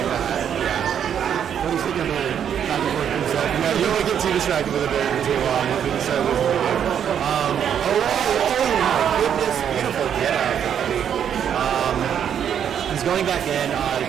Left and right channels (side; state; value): left; quieter; 8.7 dB